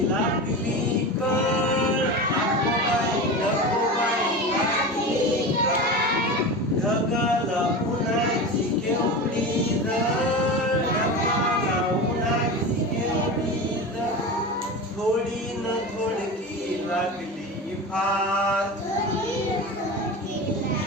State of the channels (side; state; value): both; normal; correlation 0.27